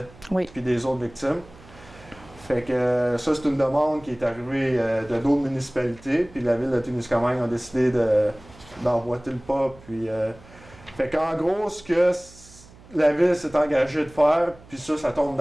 Oui. Puis des autres victimes. Fait que ça, c'est une demande qui est arrivée de d'autres municipalités. Puis la Ville de Témiscamingue a décidé d'emboîter le pas. Puis, fait qu'en gros, ce que la Ville s'est engagée de faire, puis ça tombe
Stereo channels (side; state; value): right; noise; hum, 23 dB below the sound